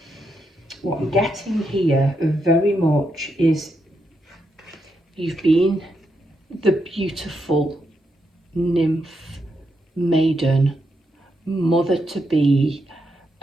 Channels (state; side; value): normal; both; correlation 0.81